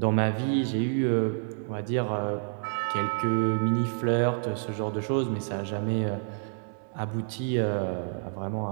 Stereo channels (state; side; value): silent; left; digital silence